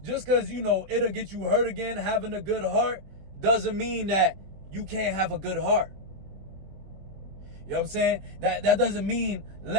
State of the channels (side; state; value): left; late; 21 ms